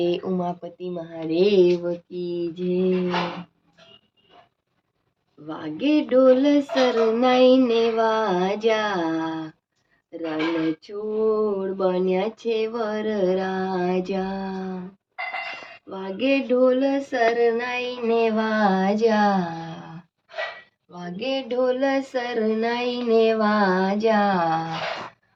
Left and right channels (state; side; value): identical; both; correlation 1.00